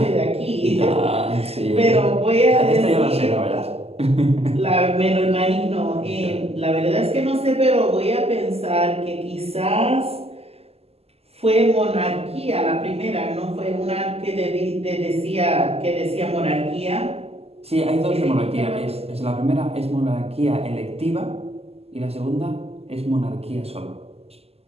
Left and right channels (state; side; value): late; left; 0.29 ms